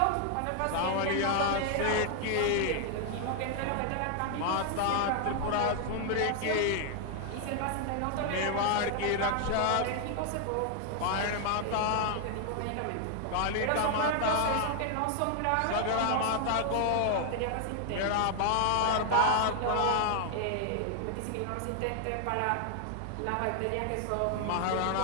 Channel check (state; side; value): different; both; correlation 0.00